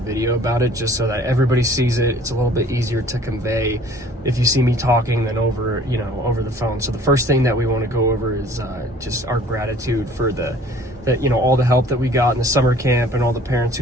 about it just so that everybody sees it. It's a little bit easier to convey if you see me talking than over the phone. So the first thing that we want to go over is just our gratitude for all the help that we got in the summer camp and all the parents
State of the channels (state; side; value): normal; both; correlation 0.52